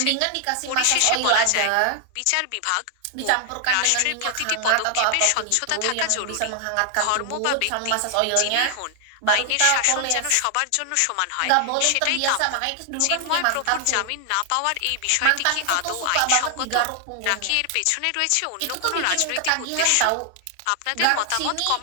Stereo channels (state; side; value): different; both; correlation 0.00